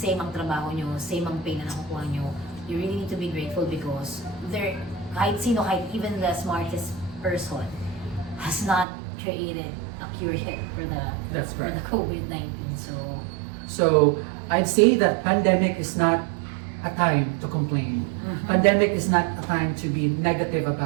ang trabaho nyo, same ang pay na nakukuha nyo, you really need to be grateful because kahit even the smartest person has not created a cure yet for the COVID-19. So I'd say that pandemic is not a time to complain. Pandemic is not a time to be negative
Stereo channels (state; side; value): drops out; left; at 8.8 s